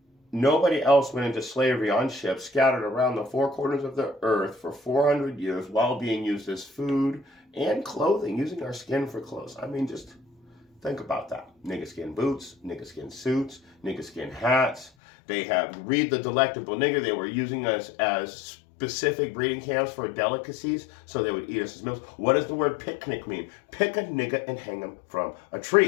nobody else went into slavery on ships scattered around the four corners of the earth for 400 years while being used as food and clothing, using our skin for clothes. I mean, just think about that. Nigga skin boots, nigga skin suits, nigga skin hats. Read the Delectable Nigger. They were using us as specific breeding camps for delicacies, so they would eat us as meals. What does the word picnic mean? Pick a nigga and hang him from a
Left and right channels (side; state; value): right; drops out; at 14.9 s